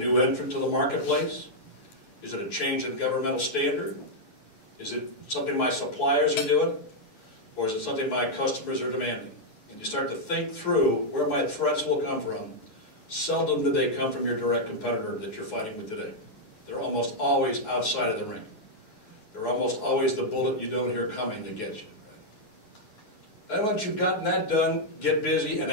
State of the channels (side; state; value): right; late; 9.5 ms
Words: entrant to the marketplace? Is it a change in governmental standard? Is it something my suppliers are doing? Or is it something my customers are demanding? And you start to think through where my threats will come from. Seldom do they come from your direct competitor that you're fighting with today. They're almost always outside of the ring. They're almost always the bullet you don't hear coming to get you. Right? Then once you've gotten that done, get busy and